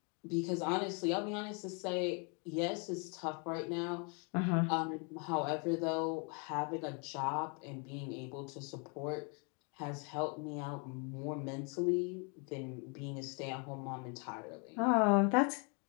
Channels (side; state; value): right; quieter; 35.1 dB